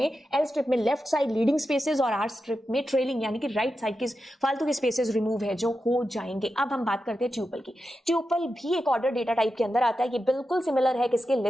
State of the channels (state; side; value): normal; both; correlation 0.90